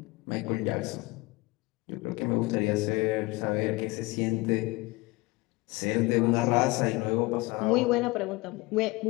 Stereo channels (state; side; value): quieter; right; 22.9 dB